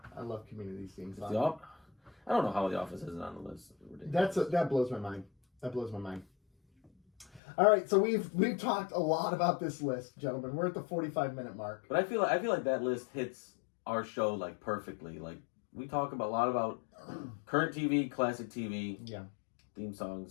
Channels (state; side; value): drops out; right; at 7.4 s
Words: I love Community's theme song. I don't know how The Office isn't on the list. That blows my mind. That blows my mind. All right, so we've talked a lot about this list, gentlemen. We're at the 45-minute mark. But I feel like that list hits our show like perfectly. Like we talk a lot about current TV, classic TV, theme